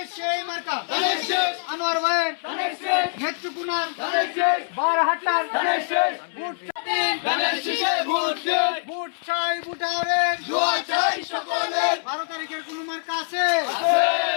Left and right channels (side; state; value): right; silent; 59 dB below the other